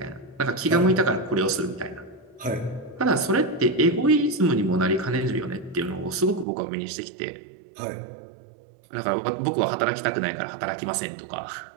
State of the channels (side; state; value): left; drops out; at 6.5 s